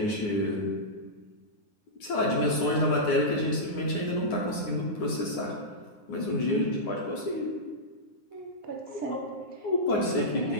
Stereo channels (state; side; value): late; right; 9.7 ms